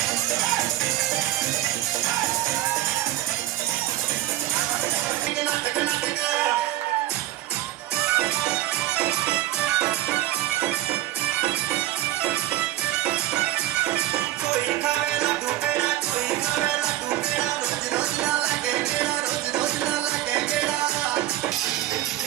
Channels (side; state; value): left; quieter; 14.6 dB